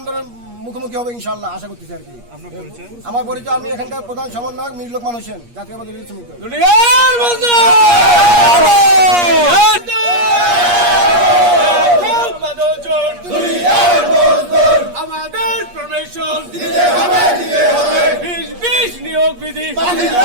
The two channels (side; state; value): left; late; 8.4 ms